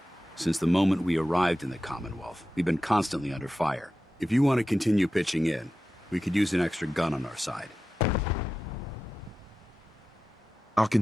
Since the moment we arrived in the Commonwealth, we've been constantly under fire. If you want to continue pitching in, we could use an extra gun on our side. I'll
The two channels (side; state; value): both; normal; correlation 0.93